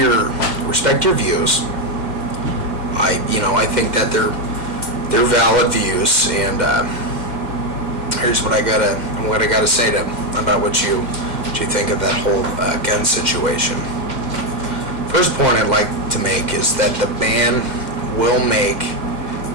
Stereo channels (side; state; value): left; late; 2.1 ms